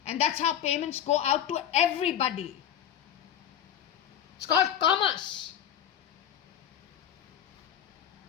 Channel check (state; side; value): quieter; right; 9.7 dB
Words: and that's how payments go out to everybody. It's called commerce.